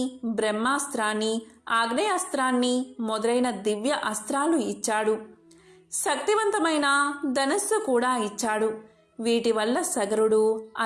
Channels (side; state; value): both; identical; correlation 1.00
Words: బ్రహ్మాస్త్రాన్ని, ఆగ్నేయాస్త్రాన్ని మొదలైన దివ్య అస్త్రాలు ఇచ్చాడు. శక్తివంతమైన ధనస్సు కూడా ఇచ్చాడు. వీటి వల్ల సగరుడు